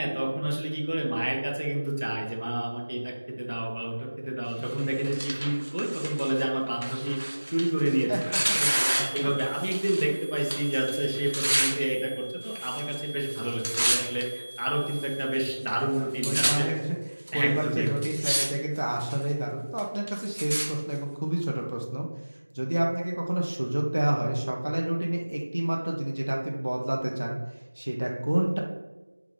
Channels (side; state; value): both; inverted; correlation -1.00